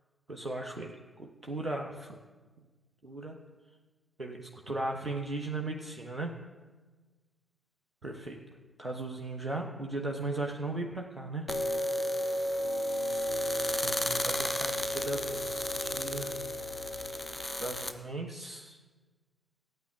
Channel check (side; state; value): both; normal; correlation 0.76